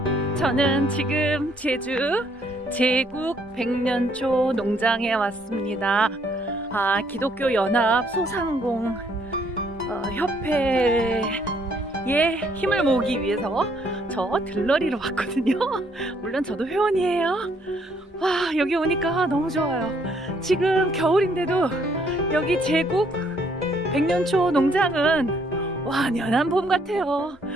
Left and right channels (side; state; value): both; normal; correlation 0.68